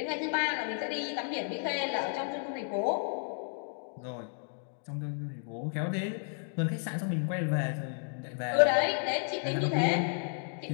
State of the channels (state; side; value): silent; right; 56 dB below the other